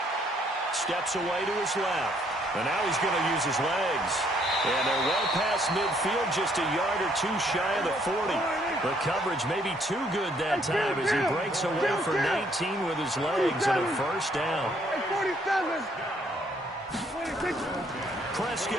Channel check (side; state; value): both; normal; correlation 0.67